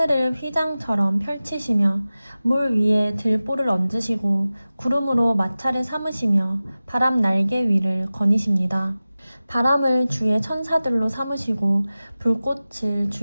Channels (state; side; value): inverted; both; correlation -0.96